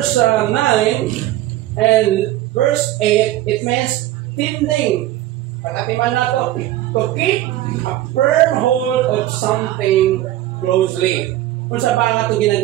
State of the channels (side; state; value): left; quieter; 14.6 dB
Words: 9 and verse 8, it means tending. Pagkatiman nato, to keep a firm hold of something closely. Unsa ba nga ito